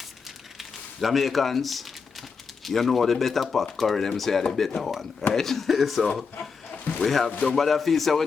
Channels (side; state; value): right; quieter; 5.4 dB